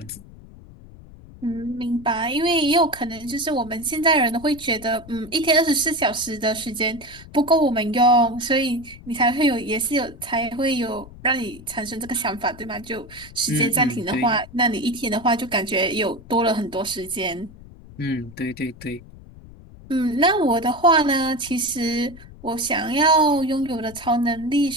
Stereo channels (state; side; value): noise; left; rumble, 19 dB below the sound